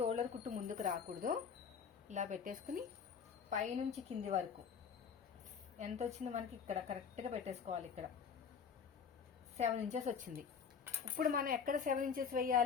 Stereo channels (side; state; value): right; quieter; 6.6 dB